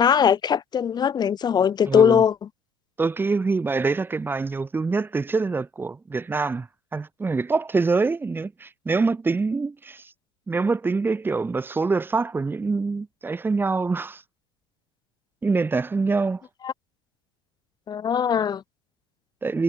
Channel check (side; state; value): both; normal; correlation 0.70